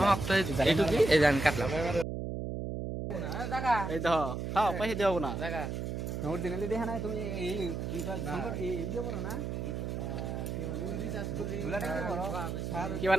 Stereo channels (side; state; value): right; noise; hum, 4 dB below the sound